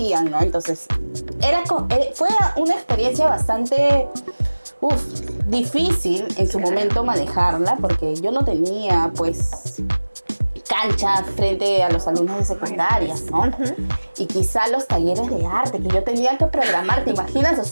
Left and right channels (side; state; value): both; inverted; correlation -1.00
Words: ¿no? Entonces, fue una experiencia bastante difícil en su momento manejarla, porque yo no tenía pues cancha frente a los alumnos de secundarias, ¿no? Y quizá los talleres de arte que yo tenía que programar, ¿te imaginas? O